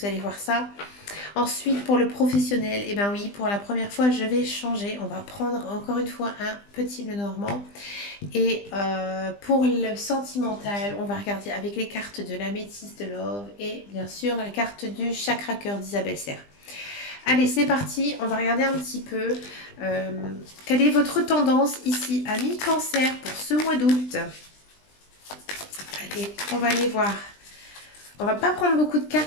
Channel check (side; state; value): right; late; 20 ms